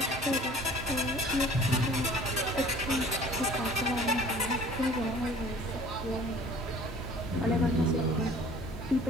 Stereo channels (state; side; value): normal; both; correlation 0.49